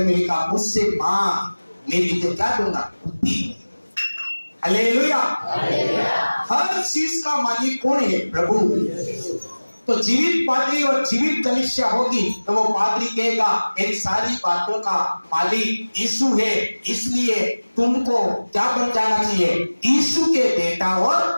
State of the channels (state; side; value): inverted; both; correlation -1.00